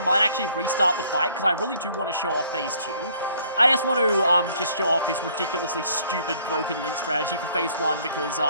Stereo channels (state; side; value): inverted; both; correlation -0.60